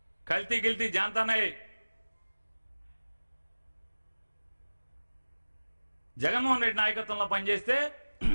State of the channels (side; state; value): both; inverted; correlation -1.00